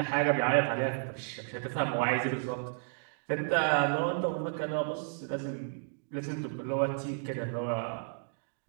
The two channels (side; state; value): left; silent; digital silence